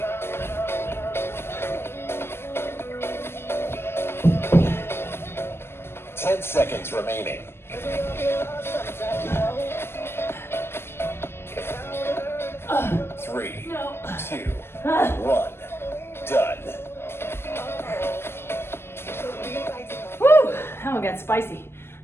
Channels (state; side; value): late; right; 0.12 ms